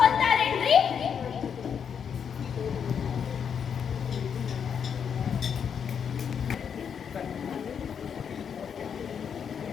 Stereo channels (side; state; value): right; quieter; 7.4 dB